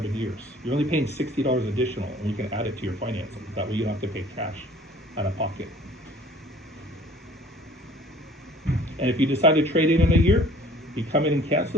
years. You're only paying $60 additional, and we can add it to your financing. That way you don't have to pay cash out of pocket. And if you decide to trade it in a year, you come in and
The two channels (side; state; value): both; normal; correlation 0.51